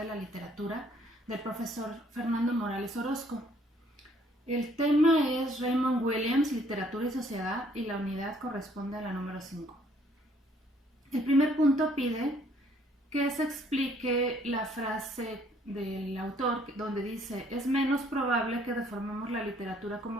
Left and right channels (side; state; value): both; normal; correlation 0.63